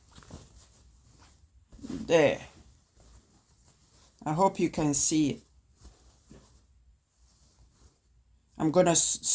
there, I hope you can see it. I'm gonna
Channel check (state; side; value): identical; both; correlation 1.00